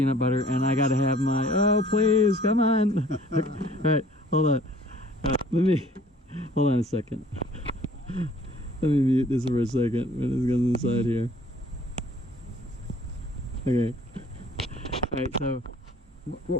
butter, and I gotta have my. Oh please, come on! All right, hold on. Hold on a second. Let me mute this for a second. It goes inside here. Okay. All right. So, what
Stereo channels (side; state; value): both; normal; correlation 0.54